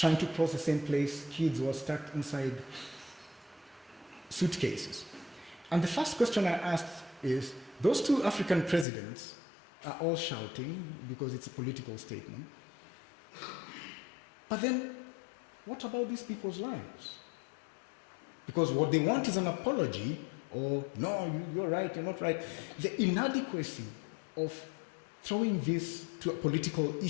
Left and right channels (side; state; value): right; drops out; at 8.8 s